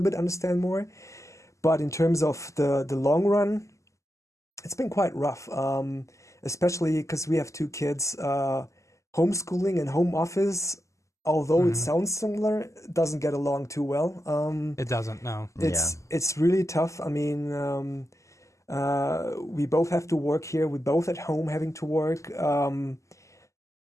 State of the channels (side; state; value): right; late; 0.15 ms